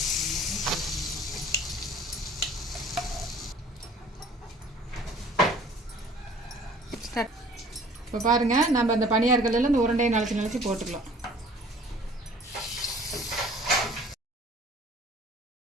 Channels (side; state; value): both; normal; correlation 0.51